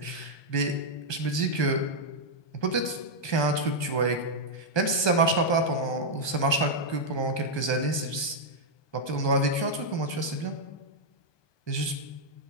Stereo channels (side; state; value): right; late; 1.2 ms